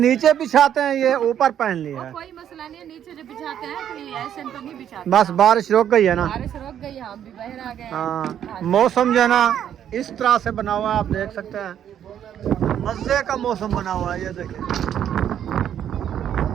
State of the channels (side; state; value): left; quieter; 9.9 dB